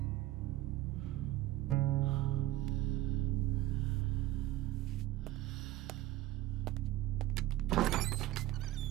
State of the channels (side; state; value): left; quieter; 15.9 dB